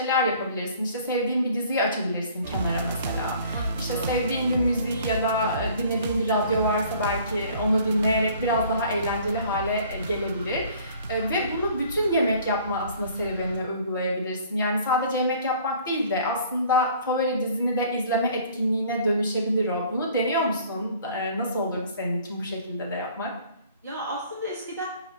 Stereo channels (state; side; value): inverted; both; correlation -0.53